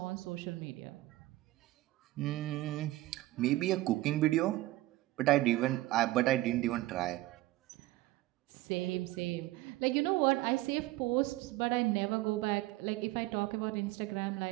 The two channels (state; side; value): quieter; left; 17.6 dB